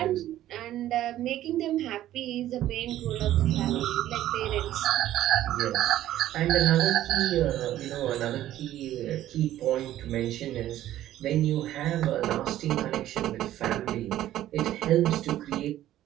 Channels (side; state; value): left; quieter; 13.3 dB